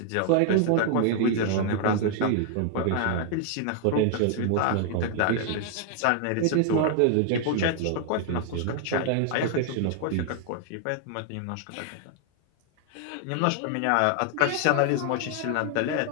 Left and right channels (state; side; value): different; both; correlation 0.00